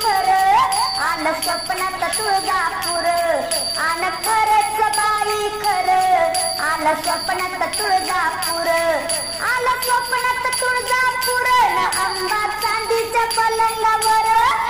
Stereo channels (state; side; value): noise; left; rumble, 20 dB below the sound